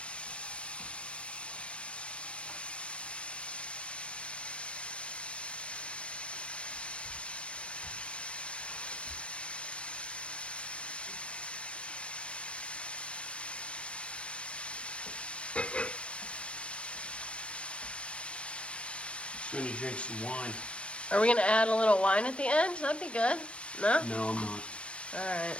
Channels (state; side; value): late; right; 0.060 ms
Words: Just going to drink some wine. Are we going to add a little wine at the end? That'd be good. No? No, I'm not. Alright.